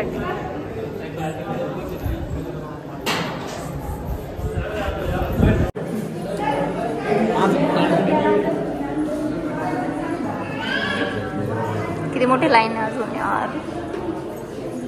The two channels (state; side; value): identical; both; correlation 1.00